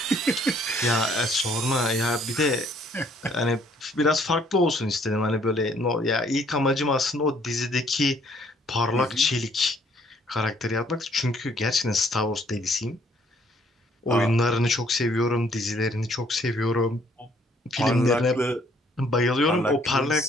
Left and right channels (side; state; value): both; normal; correlation 0.64